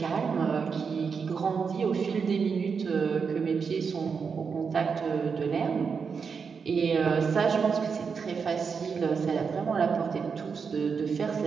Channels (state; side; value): quieter; left; 5.8 dB